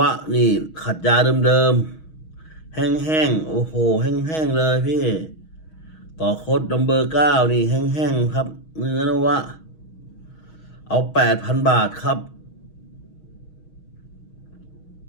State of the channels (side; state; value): right; late; 6.3 ms